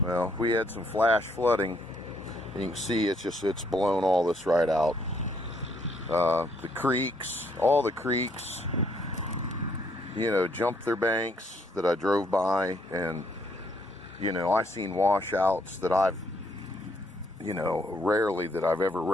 Well, we had some flash flooding. You can see it's blown all this right out. The creeks, all the creeks, jumped their banks that I drove by, and I seen washouts that I've rarely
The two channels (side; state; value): both; normal; correlation 0.70